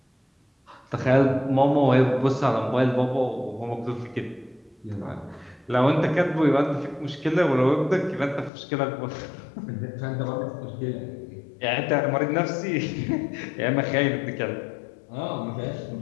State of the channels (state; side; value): drops out; right; at 8.5 s